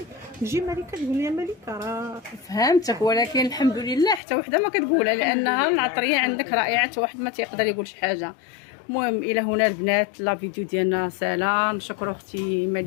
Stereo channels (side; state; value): right; drops out; at 4.2 s